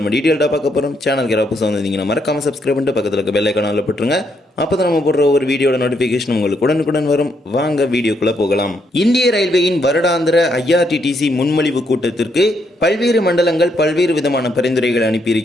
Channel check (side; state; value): both; normal; correlation 0.76